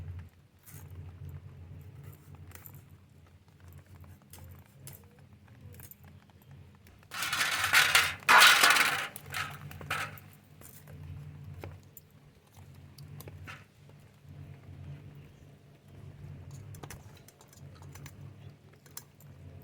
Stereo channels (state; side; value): identical; both; correlation 1.00